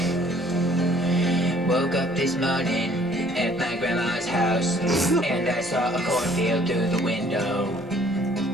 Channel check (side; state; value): both; normal; correlation 0.58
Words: Woke up this morning at my grandma's house and I saw a cornfield through the window.